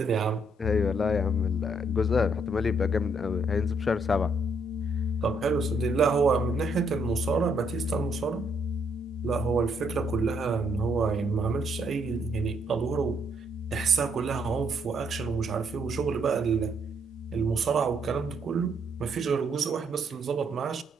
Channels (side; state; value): both; normal; correlation 0.72